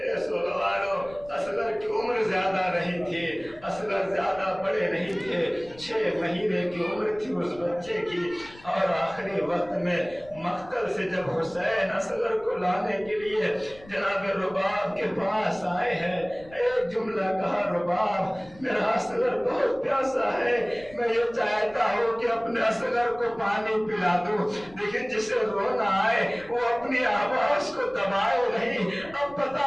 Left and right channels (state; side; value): noise; left; rumble, 22 dB below the sound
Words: سوگوارو اصغر کی عمر زیادہ نہیں تھی، اصغر زیادہ بڑے نہیں تھے، 6 مہینے کی عمر تھی اس بچے کی، اور آخری وقت میں مقتل سے جب حسین اصغر کو لانے کے لیے جناب رباب کے پاس آئے ہیں، ایک جملہ کہا، رباب میرا اصغر بہت پیاسا ہے، میں یہ چاہتا ہوں کہ اپنے اصغر کو پانی پلا دوں، لیکن جسے رونا آئے وہ اپنی آواز کو دبائے نہیں۔ اب